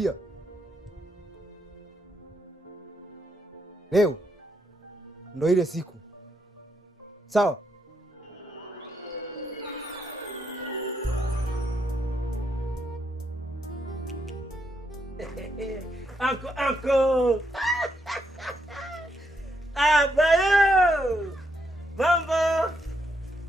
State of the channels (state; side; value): normal; both; correlation 0.78